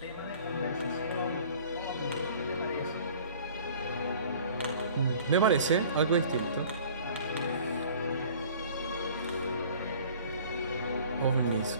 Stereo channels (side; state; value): both; inverted; correlation -0.48